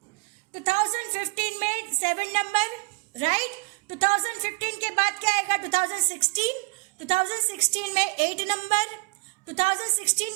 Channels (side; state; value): left; quieter; 28.7 dB